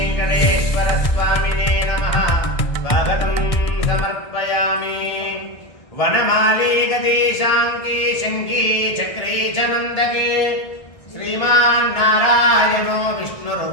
नमः स्वागतं समर्पयामि। वनमाली गतिशाङ्की शङ्की चक्रे च नन्दके श्रीमान् नारायणो विष्णुर्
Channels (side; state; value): right; late; 1.6 ms